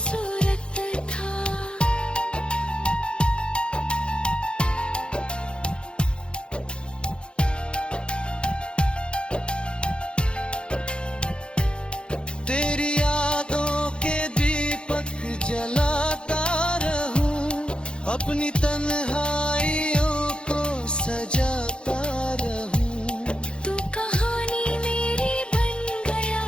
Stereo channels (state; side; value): late; right; 0.054 ms